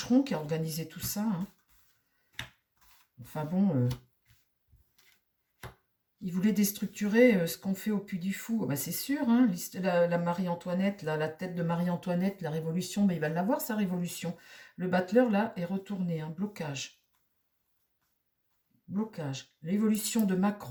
qui a organisé tout ça, hein. Enfin bon, il voulait déstructurer ce qu'on fait au Puy du Fou. Ben, c'est sûr, hein, la Marie-Antoinette, la tête de Marie-Antoinette, la révolution, mais il va l'avoir, sa révolution. Le battleur, là, est retourné, un blocage. blocage. L'évolution de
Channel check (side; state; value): both; identical; correlation 1.00